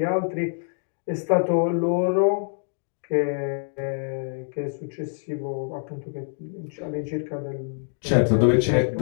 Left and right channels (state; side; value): silent; right; digital silence